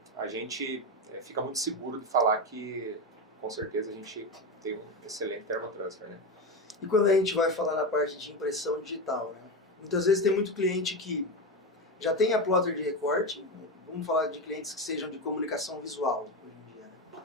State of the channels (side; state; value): both; normal; correlation 0.17